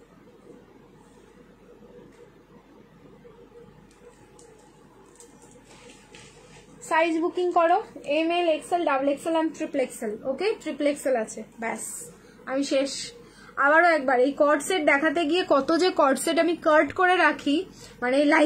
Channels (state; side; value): identical; both; correlation 1.00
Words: সাইজ বুকিং করো, M L XL double XL and triple XL. Okay, triple XL আছে, ব্যাস আমি শেষ। আবারও একবার এই কর্ড সেট দেখাতে গিয়ে কত যে কর্ড সেট আমি কাট করে রাখি মানে